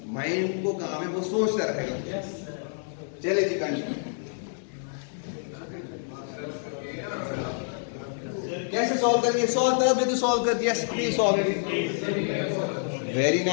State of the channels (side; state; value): right; silent; digital silence